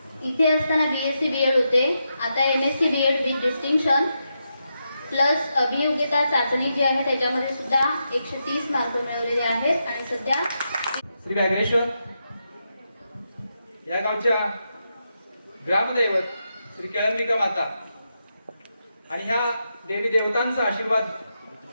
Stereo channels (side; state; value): both; inverted; correlation -0.85